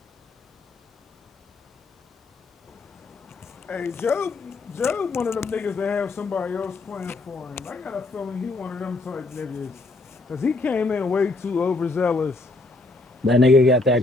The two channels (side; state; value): right; quieter; 3.2 dB